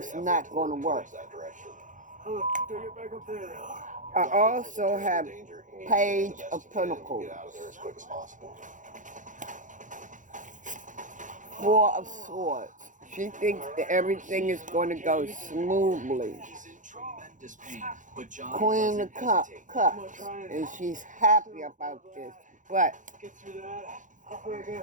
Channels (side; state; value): left; late; 0.37 ms